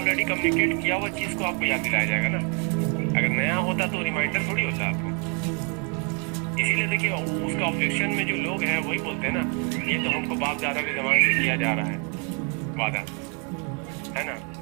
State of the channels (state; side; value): quieter; left; 36.8 dB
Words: कम्युनिकेट किया हुआ चीज को आपको याद दिलाया जाएगा ना। अगर नया होता तो रिमाइंडर थोड़ी होता आपको। इसीलिए देखिए उसका ऑब्जेक्शन में जो लोग हैं वही बोलते हैं ना, ये तो हमको बाप दादा के जमाने से किया जा रहा है वादा, है ना।